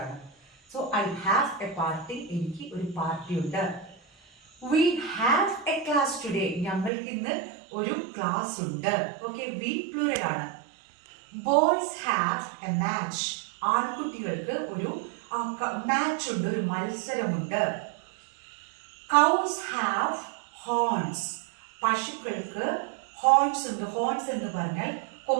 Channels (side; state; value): left; drops out; at 6.9 s